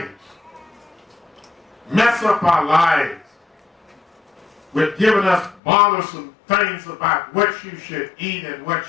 mess up our lives, with giving us bothersome things about what you should eat and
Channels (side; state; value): right; drops out; at 5.6 s